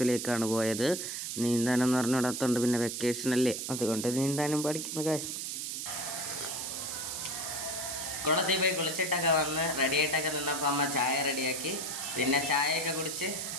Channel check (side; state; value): right; noise; hiss, 4 dB below the sound